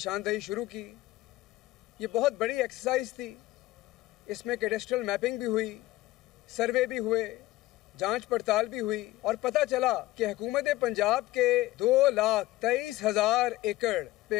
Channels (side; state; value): right; quieter; 17.2 dB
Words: شروع کی. یہ بہت بڑی ایکسرسائز تھی. اس میں کیڈسٹرل میپنگ بھی ہوئی, سروے بھی ہوئے, جانچ پڑتال بھی ہوئی, اور پتہ چلا کہ حکومت پنجاب کے 2,23,000 ایکڑ